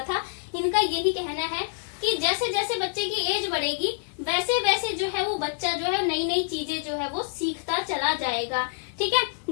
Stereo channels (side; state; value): right; silent; 60 dB below the other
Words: था, इनका यही कहना है कि जैसे जैसे बच्चे की एज बढ़ेगी वैसे वैसे जो है वो बच्चा जो है नई नई चीजें जो है वो सीखता चला जाएगा, ठीक है।